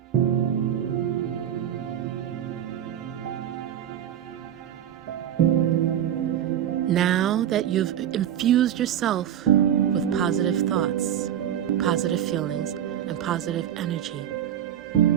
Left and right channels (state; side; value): quieter; left; 10.2 dB